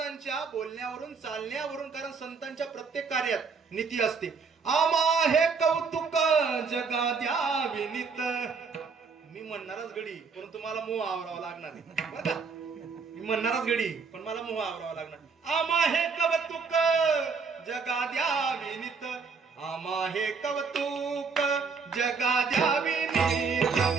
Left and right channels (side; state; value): left; quieter; 5.2 dB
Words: बोलण्यावरून, चालण्यावरून, कारण संतांच्या प्रत्येक कार्यात नीती असते. आमा हे कौतुक जगा द्यावी नित. मी म्हणणारच गडी, परंतु मला मोह आवरावा लागणार आहे बरं का. मी म्हणणारच गडी, पण मला मोह आवरावा लागणार. आमा हे कौतुक जगा द्यावी नित, आमा हे कौतुक जगा द्यावी नित,